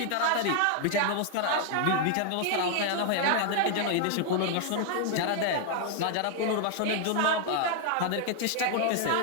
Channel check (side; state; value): both; different; correlation 0.00